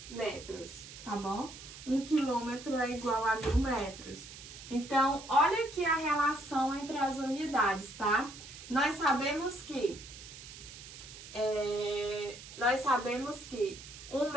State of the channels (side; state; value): right; noise; hiss, 15 dB below the sound